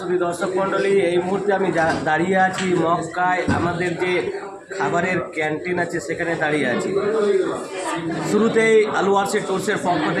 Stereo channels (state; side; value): identical; both; correlation 1.00